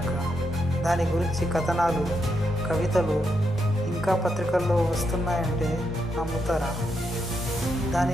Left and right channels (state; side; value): normal; both; correlation 0.81